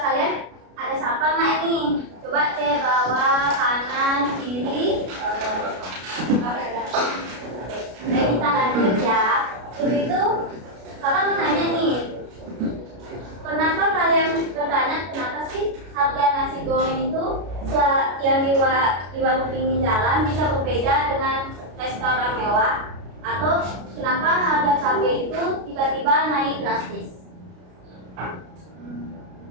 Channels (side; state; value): left; late; 33 ms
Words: kalian ada siapa nggak ini? Coba cek bawah, kanan, kiri. Oke, kita lanjut ya. Sebelum itu, kakak mau nanya nih, kenapa kalian bertanya kenapa sih harga nasi goreng itu yang di warung pinggir jalan bisa berbeda dengan restoran mewah? Atau kenapa harga cabai itu tiba-tiba naik drastis?